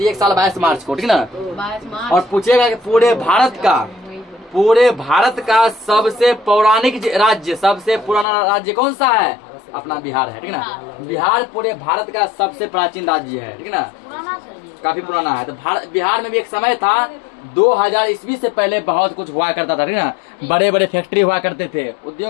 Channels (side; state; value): right; drops out; at 8.2 s